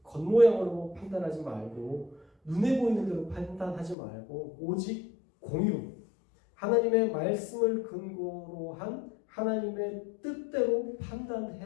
겉모양으로 판단하지 말고 눈에 보이는 대로 판단하지 말고 오직 공의로 하나님의 말씀을 근거로 한 하나님의 뜻대로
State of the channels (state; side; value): drops out; right; at 4.0 s